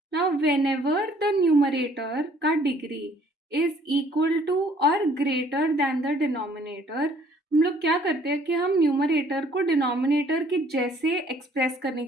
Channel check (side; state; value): both; normal; correlation 0.59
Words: Now whenever the numerator का degree is equal to or greater than the denominator, हम लोग क्या करते हैं कि हम numerator को denominator के जैसे एक्सप्रेस करने